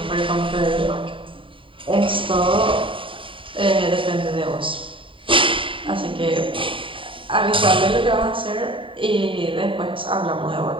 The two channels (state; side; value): late; left; 0.25 ms